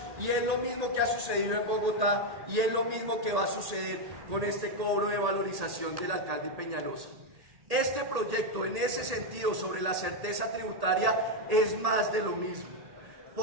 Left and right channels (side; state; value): left; late; 1.8 ms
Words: y es lo mismo que ha sucedido en Bogotá y es lo mismo que va a suceder con este cobro de valorización del alcalde Peñalosa. Este proyecto, en ese sentido, sobre la certeza tributaria, es más de lo mismo,